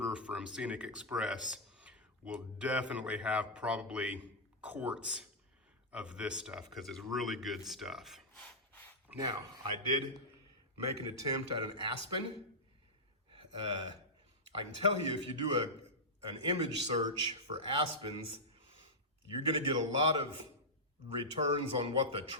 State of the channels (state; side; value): normal; both; correlation -0.10